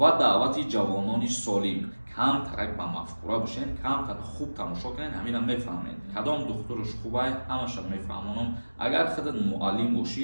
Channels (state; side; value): inverted; both; correlation -1.00